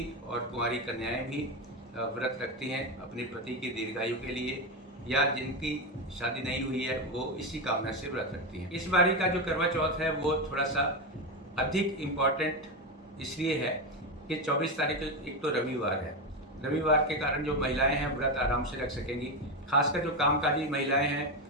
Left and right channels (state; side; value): normal; both; correlation 0.12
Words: और कुंवारी कन्याएं भी व्रत रखती हैं अपने पति की दीर्घायु के लिए, या जिनकी शादी नहीं हुई है वो इसी कामना से व्रत रखती हैं। इस बारी का जो करवा चौथ है वो थोड़ा सा अधिक इम्पॉर्टेंट इसलिए है कि 24 तारीख को एक तो रविवार है। रविवार के कारण जो महिलाएं हैं व्रत आराम से रख सकेंगी। खासकर जो कामकाजी महिलाएं